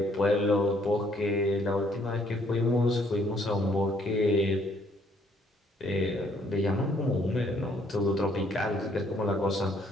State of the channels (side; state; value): both; normal; correlation 0.66